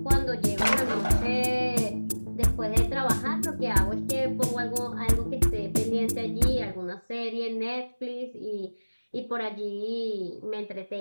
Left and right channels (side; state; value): both; inverted; correlation -1.00